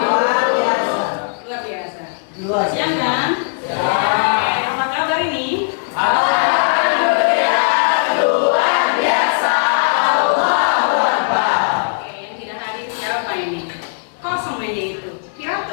luar biasa. Luar biasa. Luar Siang kan? Ya. Apa kabar ini? Alhamdulillah luar biasa. Allahu Akbar. Oke, yang tidak hadir siapa ini? Kosong meja itu.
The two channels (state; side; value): silent; right; 59 dB below the other